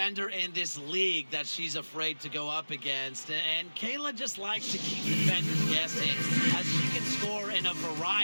in this league that she's afraid to go up against. And Kayla just likes to keep defenders guessing as she can score in a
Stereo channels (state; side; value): inverted; both; correlation -1.00